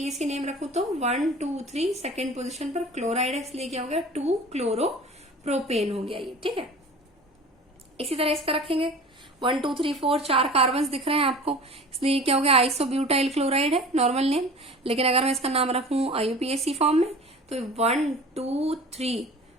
नेम रखूं तो 1 2 3 सेकेंड पोजिशन पर क्लोराइड है, इसलिए क्या हो गया, 2 क्लोरोप्रोपेन हो गया ये। ठीक है, इसी तरह इसका रखेंगे 1 2 3 4 चार कार्बन दिख रहे हैं आपको, इसलिए क्या हो गया, आइसोब्यूटाइल क्लोराइड है नॉर्मल नेम। लेकिन अगर मैं इसका नाम रखूं IUPAC फॉर्म में तो 1 2 3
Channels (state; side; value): normal; both; correlation 0.40